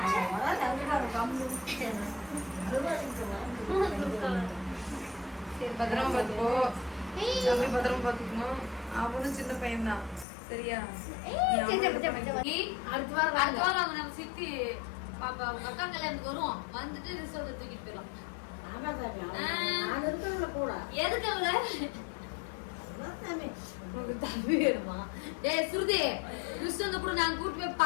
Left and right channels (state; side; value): drops out; right; at 10.2 s